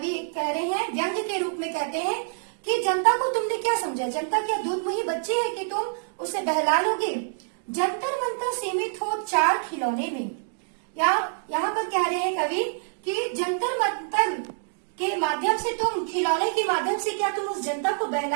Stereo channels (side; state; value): left; silent; digital silence